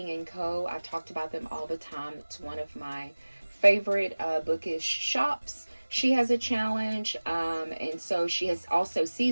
and Co. I've talked about them all the time. It's one of my favorite bookish shops. She has a challenge, and so she has also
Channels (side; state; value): both; inverted; correlation -1.00